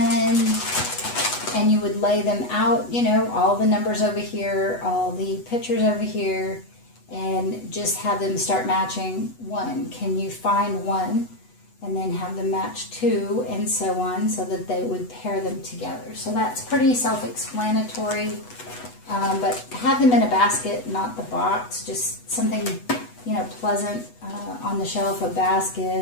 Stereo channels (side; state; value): right; late; 8.1 ms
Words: 10, and you would lay them out, you know, all the numbers over here, all the pictures over here, and just have them start matching 1. Can you find 1? And then have them match 2, and so on, so that they would pair them together. So that's pretty self-explanatory, but have them in a basket, not the box, just something, you know, pleasant on the shelf, a